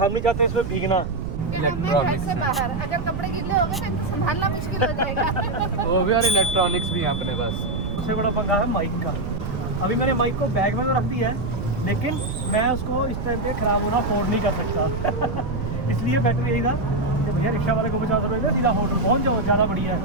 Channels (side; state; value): right; noise; rumble, 5 dB below the sound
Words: नहीं चाहते इसमें भीगना। घर से बाहर अगर कपड़े गिले हो गए तो इनको संभालना मुश्किल हो जाएगा। वो भी और इलेक्ट्रॉनिक्स भी यहाँ अपने पास। सबसे बड़ा पंगा है माइक का। अभी मैंने माइक को बैग में तो रख दिया है, लेकिन मैं उसको इस टाइम पे ख़राब होना अफोर्ड नहीं कर सकता। इसलिए बेटर यही था कि भैया रिक्शा वाले को 50 रुपये में सीधा होटल पहुँच जाओ, ज़्यादा बढ़िया